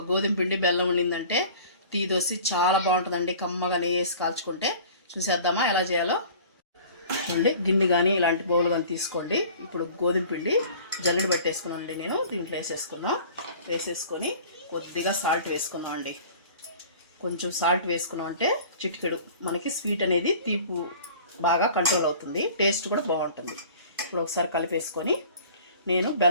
గోధుమ పిండి బెల్లం ఉండిందంటే టీ దోశ చాలా బాగుంటుందండి. కమ్మగా నెయ్యి వేసి కాల్చుకుంటే. చూసేద్దామా ఎలా చేయాలో? చూడండి, గిన్నె కానీ ఇలాంటి బౌల్ కానీ తీసుకోండి. ఇప్పుడు గోధుమ పిండి జల్లెడ పట్టేసుకున్నానండి. నేను దీంట్లో వేసేసుకొని కొద్దిగా సాల్ట్ వేసుకున్నాం అండి. కొంచెం సాల్ట్ వేసుకున్నాం అంటే చిటికెడు మనకి స్వీట్ అనేది తీపు బాగా కంట్రోల్ అవుతుంది, టేస్ట్ కూడా బాగుంటుంది. ఇప్పుడు ఒకసారి కలిపేసుకొని నేను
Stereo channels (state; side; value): inverted; both; correlation -0.45